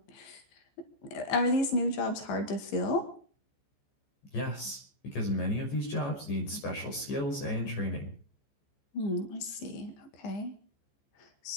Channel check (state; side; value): late; right; 14 ms